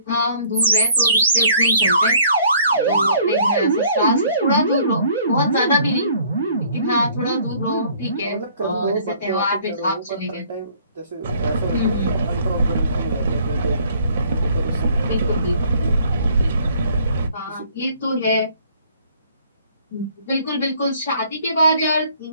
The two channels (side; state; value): both; inverted; correlation -0.59